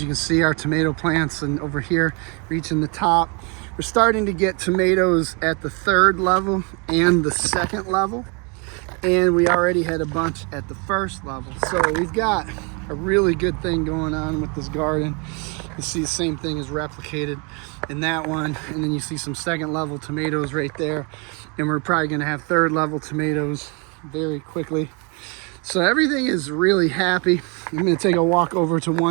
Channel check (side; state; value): left; quieter; 32.3 dB